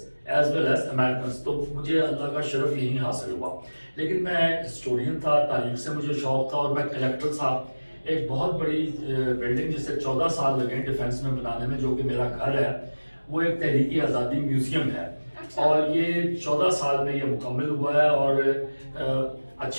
as well as Americans. تو مجھے اللہ کا شرف یہی حاصل ہوا. لیکن میں ہسٹورین تھا، تاریخ سے مجھے شوق تھا، اور میں کلیکٹر تھا. ایک بہت بڑی بلڈنگ جسے 14 سال لگے ڈیفینس میں بنانے میں، جو کہ میرا گھر ہے، وہ ایک تحریک آزادی میوزیم ہے، اور یہ 14 سال میں یہ مکمل ہوا ہے. اور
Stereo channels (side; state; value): both; inverted; correlation -1.00